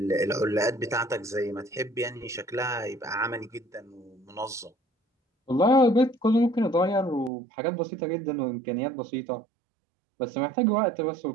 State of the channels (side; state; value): left; drops out; at 7.3 s